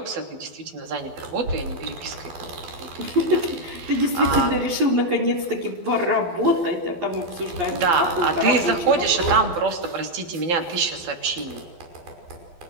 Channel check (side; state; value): left; late; 12 ms